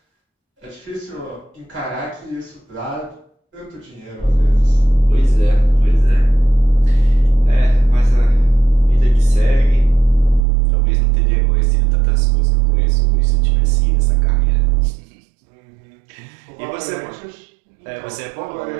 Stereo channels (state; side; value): drops out; left; at 10.4 s